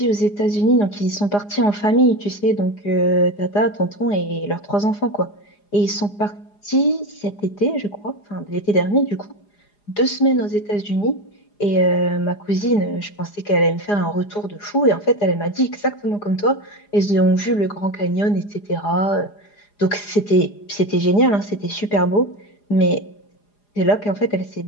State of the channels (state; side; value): late; right; 4.9 ms